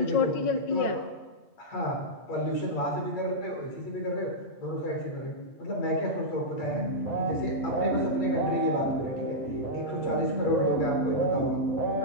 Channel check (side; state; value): right; late; 8.5 ms